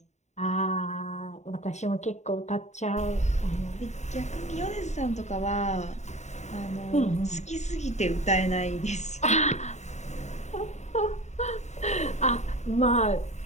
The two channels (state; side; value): late; right; 0.33 ms